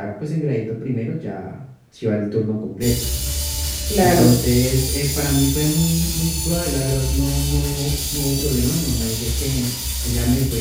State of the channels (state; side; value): identical; both; correlation 1.00